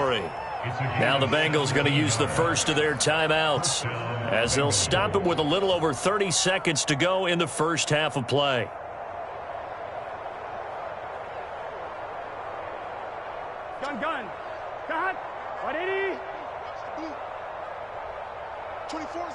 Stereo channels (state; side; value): identical; both; correlation 1.00